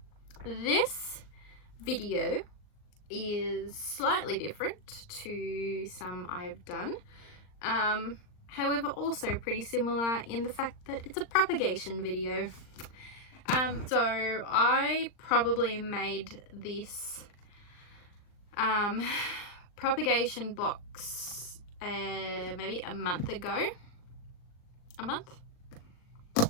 This video is slightly different to some I've done. However, also pretty similar in the fact that it's a propagation video. So I probably made this propagation box maybe a month ago.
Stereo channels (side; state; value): right; late; 39 ms